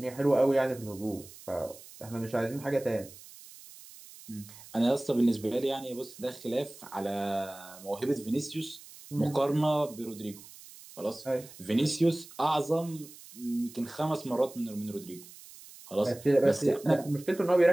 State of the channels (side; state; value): right; noise; hiss, 19 dB below the sound